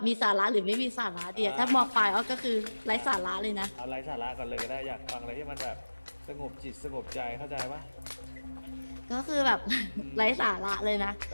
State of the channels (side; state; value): both; inverted; correlation -1.00